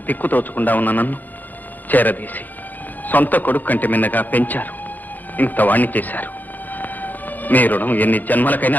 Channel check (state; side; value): late; right; 0.084 ms